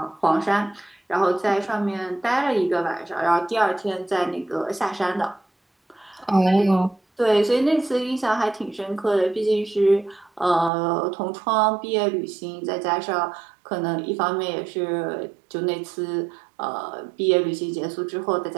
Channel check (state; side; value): drops out; left; at 10.7 s